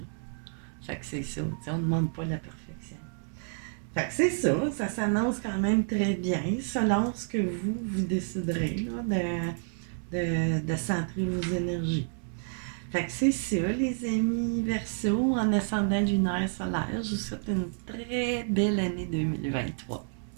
Fait que c'est ça. T'sais, on ne demande pas la perfection. Fait que c'est ça. Ça s'annonce quand même très bien selon ce que vous déciderez là, de centrer vos énergies. Fait que c'est ça, les amis Verseau, en ascendant lunaire solaire. Je vous souhaite une très belle année 2023.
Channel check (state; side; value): silent; left; 58 dB below the other